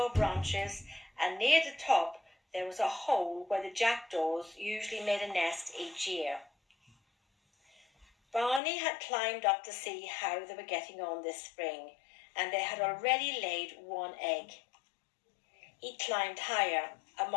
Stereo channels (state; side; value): drops out; right; at 8.6 s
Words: branches, and near the top there was a hole where the jackdaws usually made a nest each year. Barney had climbed up to see how they were getting on this spring, and they had already laid one egg. He climbed higher